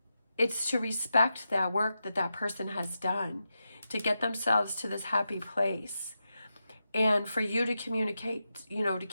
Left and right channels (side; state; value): both; inverted; correlation -0.89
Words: it's to respect that work that person has done to get themselves to this happy place. And for you to communicate, you know, to